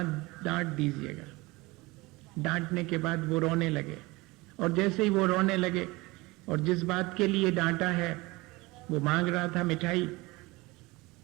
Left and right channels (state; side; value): quieter; left; 22.6 dB